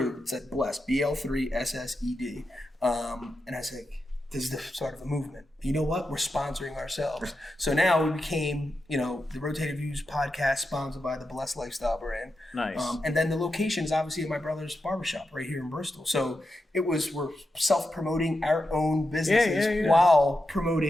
it said Blessed, BL3 SSED. And I was like, this is the start of a movement. You know what? We're sponsoring ourselves. So now we became, the Rotated Views podcast sponsored by the Bl3ssed Lifestyle brand. Nice. And then the location is obviously at my brother's barbershop right here in Bristol. So we're self-promoting our own businesses while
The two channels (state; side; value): normal; both; correlation 0.88